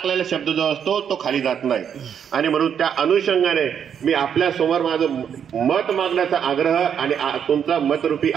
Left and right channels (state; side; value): quieter; left; 8.1 dB